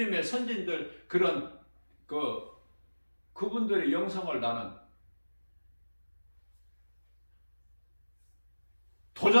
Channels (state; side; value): inverted; both; correlation -1.00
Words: 선진들 그런 그분들의 영성을 나는